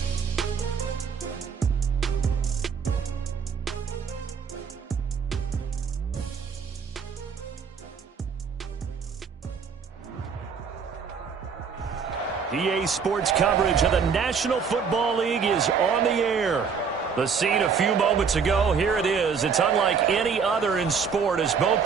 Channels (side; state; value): left; quieter; 6.1 dB